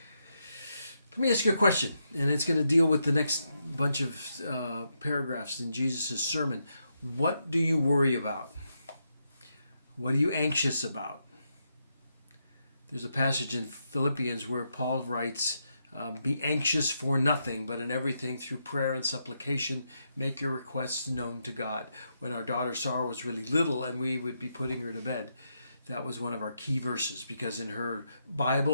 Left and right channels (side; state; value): both; inverted; correlation -0.82